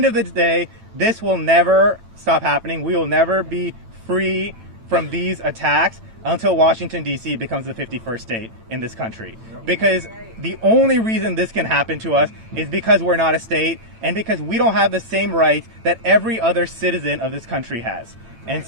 of the day, this will never stop happening. We will never be free from these attacks until Washington, D.C. becomes the 51st state in this country. Because the only reason this can happen to us is because we're not a state, and because we don't have the same rights that every other citizen of this country has. And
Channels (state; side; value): late; left; 9.0 ms